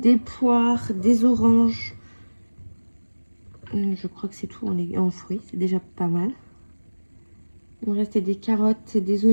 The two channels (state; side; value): inverted; both; correlation -1.00